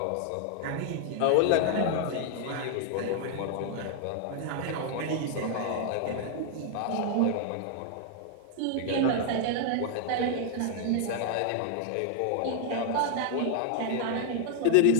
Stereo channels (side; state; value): both; different; correlation 0.00